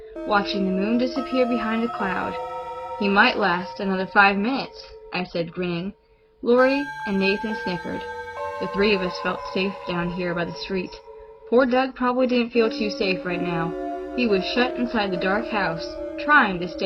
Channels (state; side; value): identical; both; correlation 1.00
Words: watching the moon disappear behind a cloud. "He might last another 5 minutes, I said, grinning. Lori and Nathan snickered. The three of us felt safe down here by the street. Poor Doug probably didn't feel too safe right now. He was shut inside the dark house, trying to